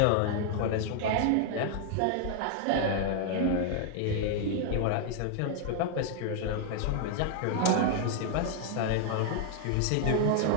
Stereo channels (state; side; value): different; both; correlation 0.00